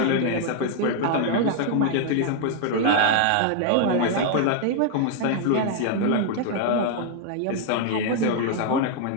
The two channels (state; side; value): different; both; correlation 0.00